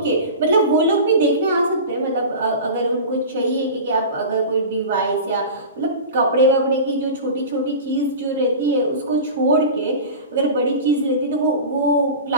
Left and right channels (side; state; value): both; inverted; correlation -0.32